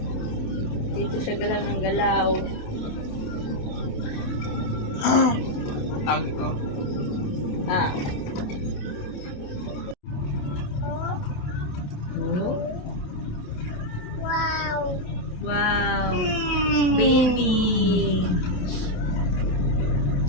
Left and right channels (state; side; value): late; right; 28 ms